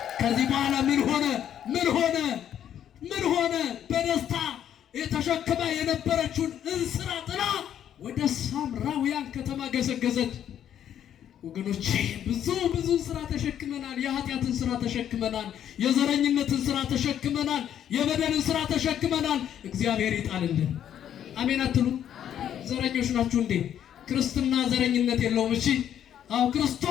ከዚህ በኋላ ምን ሆነ? በደስታ የተሸክማ የነበረችውን እንስራ ጥላ ወደ ሳምራውያን ከተማ ገሰገሰች። ወገኖቼ ብዙ ስራ ተሸክመናል። የኃጢአትን ስራ ተሸክመናል። የዘረኝነትን ስራ ተሸክመናል። የበደልን ስራ ተሸክመናል። እግዚአብሔር ይጣልልን። አሜን አትሉ? ዘረኞች ናችሁ እንዴ? ክርስትና ዘረኝነት የለውም። እሺ አው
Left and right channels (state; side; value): quieter; right; 10.0 dB